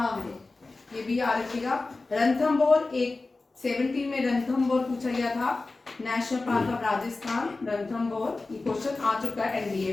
है, ये भी याद रखिएगा। रणथंभौर एक 70 में रणथंभौर पूछा गया था, national park of Rajasthan Ranthambore, ये क्वेश्चन आ चुका है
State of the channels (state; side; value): quieter; right; 3.5 dB